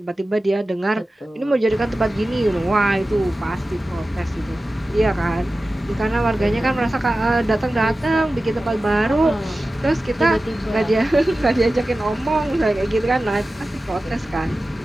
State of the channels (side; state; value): both; normal; correlation 0.95